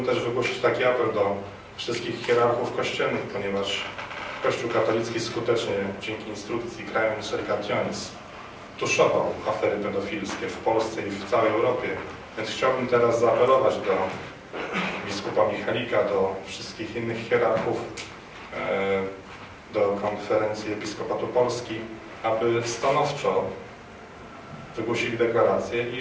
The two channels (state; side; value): identical; both; correlation 1.00